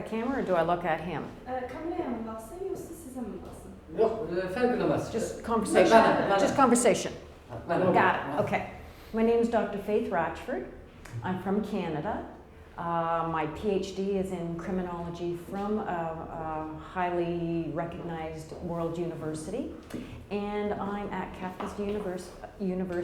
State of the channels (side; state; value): both; identical; correlation 1.00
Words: camera or do I look at him? Kameraya mı baksın yoksa size mi baksın? Yok, fark edemez. Just conversation. Just conversation. Got Got it. Okay. My name is Dr. Faith Ratchford. I'm from Canada. My PhD is in criminology from a highly recognized world university. And I'm at Qafqaz